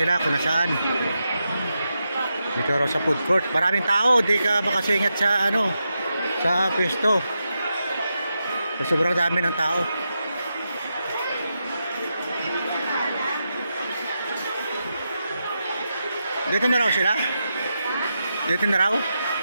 kung nasaan. Dito raw sa food court. Maraming tao, di ka makasingit sa ano, sa pwesto. Sobrang dami ng tao. Dito na raw sila? Dito na raw?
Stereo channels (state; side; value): inverted; both; correlation -0.87